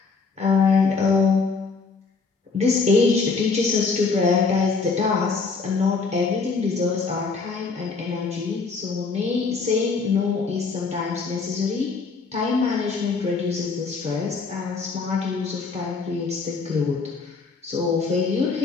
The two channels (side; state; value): right; quieter; 4.5 dB